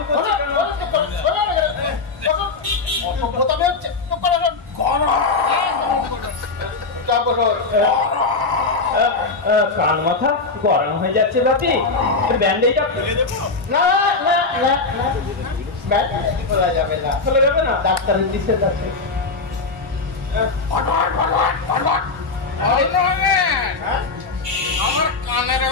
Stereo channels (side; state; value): right; quieter; 4.0 dB